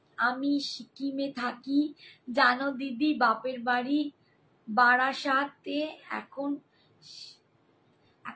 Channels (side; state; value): both; identical; correlation 1.00